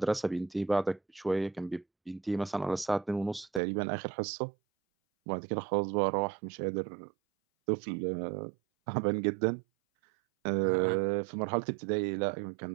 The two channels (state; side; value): drops out; left; at 3.6 s